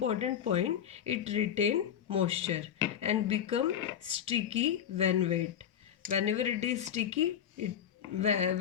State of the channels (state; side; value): quieter; right; 9.3 dB